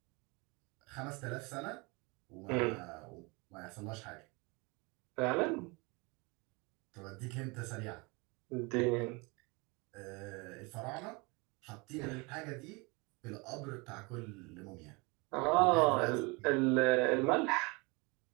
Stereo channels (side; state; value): left; quieter; 27.8 dB